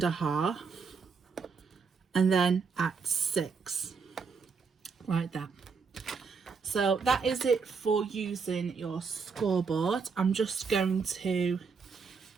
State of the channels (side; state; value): left; quieter; 5.3 dB